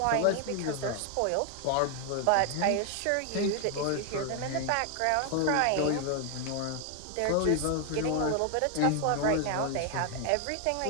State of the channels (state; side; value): different; both; correlation 0.00